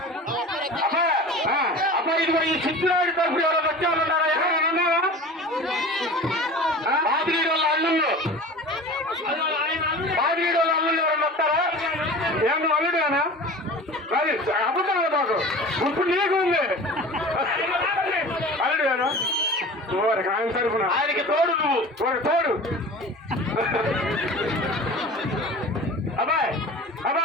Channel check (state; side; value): normal; both; correlation 0.37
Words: అబ్బా ఇదిగో ఈ సిద్ధురాడి తరపు ఎవరైనా వచ్చే వాళ్ళు ఉన్నారా? ఎవరైనా ఉన్నారా? బాదిగీడి వాళ్ళ అల్లుళ్ళు, బాదిగీడి వాళ్ళ అల్లుళ్ళు ఎవరైనా వస్తారా? ఏమన్నా అల్లుడేనా? అది అబద్ధం మాకు ఇప్పుడు నీకు ఉంది అల్లుడేనా? ఆయన తరపున ఆయనకి తోడు నువ్వు, ఒక తోడు. అబ్బాయి